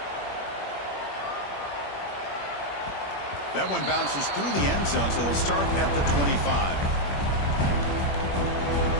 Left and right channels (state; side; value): late; right; 21 ms